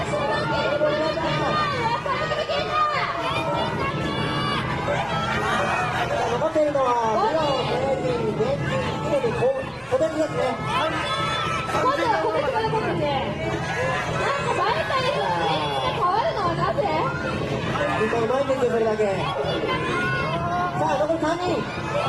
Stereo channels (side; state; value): both; identical; correlation 1.00